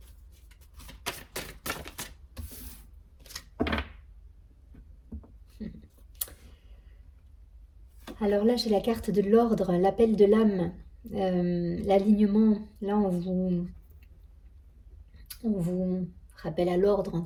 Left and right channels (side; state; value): both; identical; correlation 1.00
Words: Alors là, j'ai la carte de l'ordre, l'appel de l'âme, l'alignement. Là, on vous rappelle à l'ordre,